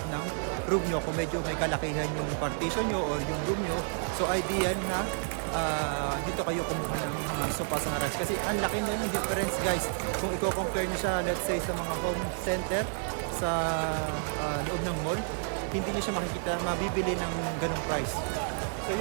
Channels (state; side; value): silent; left; 58 dB below the other